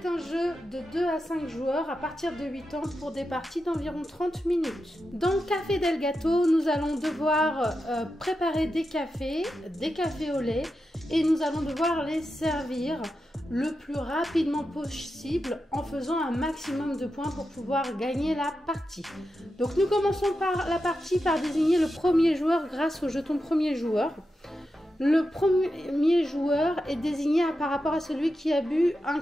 un jeu de 2 à 5 joueurs à partir de 8 ans pour des parties d'environ 30 minutes. Dans Café del Gato, nous allons devoir préparer des cafés au lait et nous allons devoir les servir le plus rapidement possible en faisant un maximum de points pour pouvoir gagner la partie. Donc nous commençons par la partie par désigner le premier joueur grâce au jeton premier joueur. Le premier joueur est désigné par rapport à celui qui a bu un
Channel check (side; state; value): both; normal; correlation 0.89